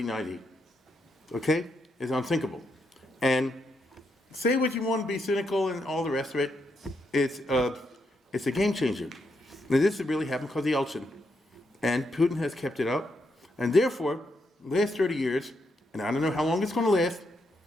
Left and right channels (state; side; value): normal; both; correlation 0.80